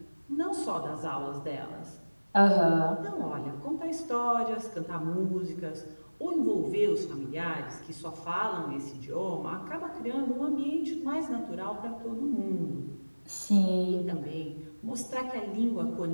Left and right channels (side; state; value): both; inverted; correlation -1.00